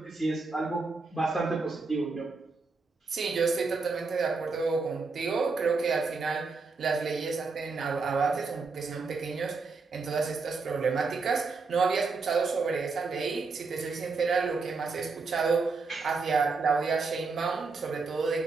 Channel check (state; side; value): quieter; left; 4.3 dB